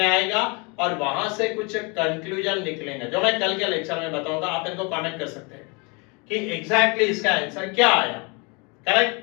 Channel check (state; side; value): quieter; right; 30.3 dB